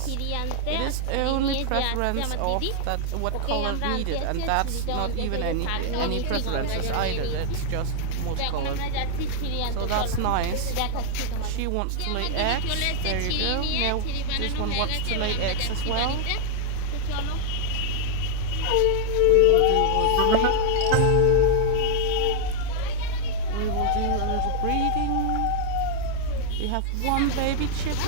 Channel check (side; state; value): both; different; correlation 0.00